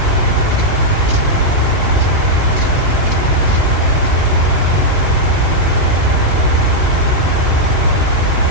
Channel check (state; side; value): late; left; 2.8 ms